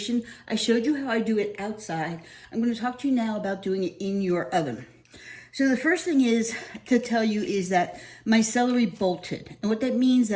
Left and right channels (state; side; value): identical; both; correlation 1.00